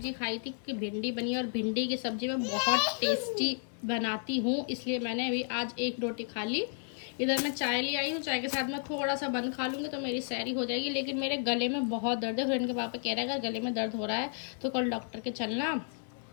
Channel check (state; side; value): silent; right; 56 dB below the other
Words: खाई थी कि भिंडी बनी, और भिंडी की सब्जी मैं बहुत टेस्टी बनाती हूँ, इसलिए मैंने अभी आज एक रोटी खा ली। इधर मैं चाय ले आई हूँ, चाय के साथ मैं थोड़ा सा बंद खा लूँगी तो मेरी सैरी हो जाएगी। लेकिन मेरे गले में बहुत दर्द है। फ्रेंड के पापा कह रहे हैं अगर गले में दर्द हो रहा है तो कल डॉक्टर के चलना,